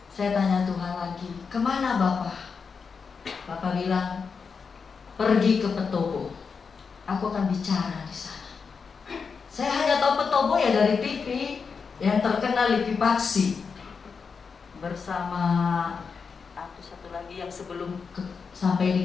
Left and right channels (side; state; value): right; quieter; 5.5 dB